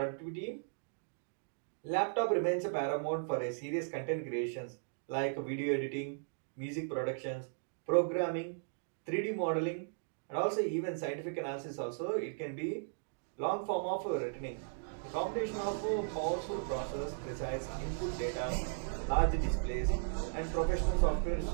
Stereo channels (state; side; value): silent; left; digital silence